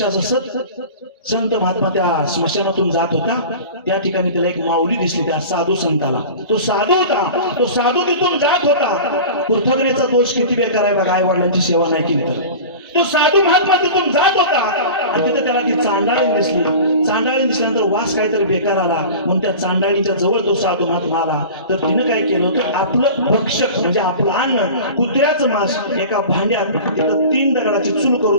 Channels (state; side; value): inverted; both; correlation -0.36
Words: असं संत महात्मा त्या स्मशानातून जात होता. त्या ठिकाणी त्याला एक माऊली दिसली, त्या साधू संताला. तो साधू होता, तो साधू तिथून जात होता. कृतज्ञतेचा दोष किती बेकार आहे बघा, आई वडिलांची सेवा नाही केली तर. तो साधू महात्मा तिथून जात होता आणि तिथे त्याला ती चांडाळी दिसली. चांडाळी दिसल्यानंतर वास काहीतरी बेकार आला, म्हणून त्या चांडाळीच्या जवळ तो साधू महात्मा आला. तर तिनं काय केलं होतं, आपलं भक्षक म्हणजे आपलं अन्न, कुत्र्याचं मांस एका भांड्यात तिथं 3 दगडाची चूल